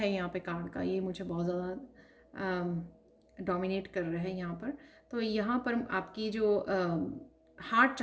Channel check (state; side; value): identical; both; correlation 1.00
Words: यहाँ पे कार्ड का, ये मुझे बहुत ज़्यादा डोमिनेट कर रहा है यहाँ पर। तो यहाँ पर आपकी जो हार्ट